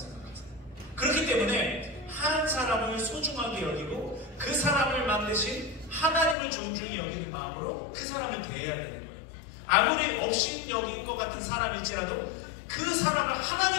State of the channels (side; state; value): right; drops out; at 6.4 s